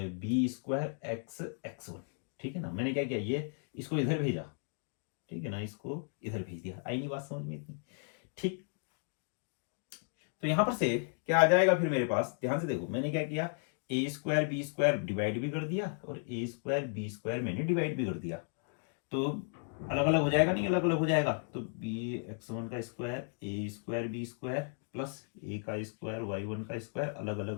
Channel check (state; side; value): silent; right; 55 dB below the other